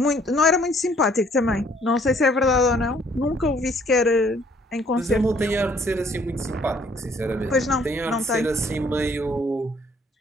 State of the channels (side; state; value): both; normal; correlation 0.62